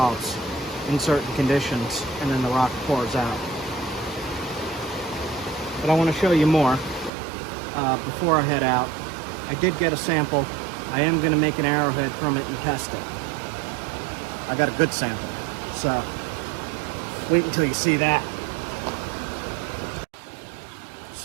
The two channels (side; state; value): left; drops out; at 7.1 s